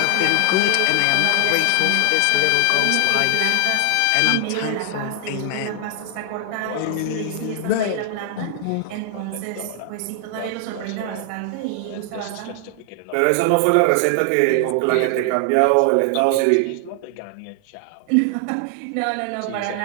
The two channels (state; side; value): different; both; correlation 0.00